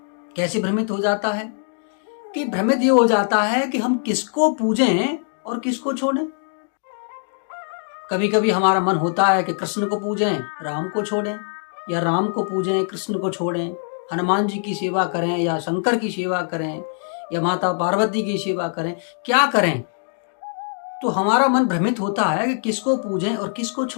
कैसे भ्रमित हो जाता है? कि भ्रमित ये हो जाता है कि हम किसको पूजें और किसको छोड़ें। कभी कभी हमारा मन होता है कि कृष्ण को पूजें, राम को छोड़ें, या राम को पूजें, कृष्ण को छोड़ें, हनुमान जी की सेवा करें या शंकर की सेवा करें या माता पार्वती की सेवा करें, क्या करें। तो हमारा मन भ्रमित होता है कि किसको पूजें और किसको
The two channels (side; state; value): right; silent; 64 dB below the other